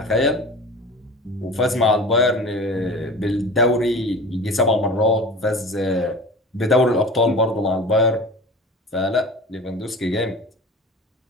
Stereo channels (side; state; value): both; normal; correlation 0.37